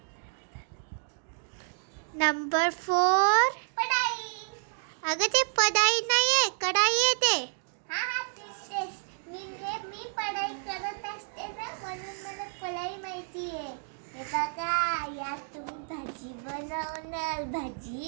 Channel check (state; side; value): silent; left; digital silence